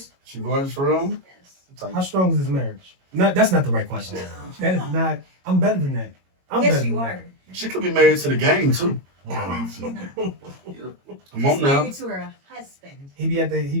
She gorgeous for real? Yes. How strong is his marriage? No, that's not the right question. That is not. I'm better than that. I'm Yes, better you than are. She could be married to the game too. Come on She's now. married to her husband. He be at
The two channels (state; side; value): late; left; 22 ms